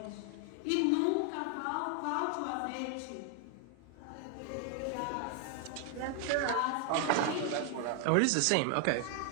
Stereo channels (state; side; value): different; both; correlation 0.00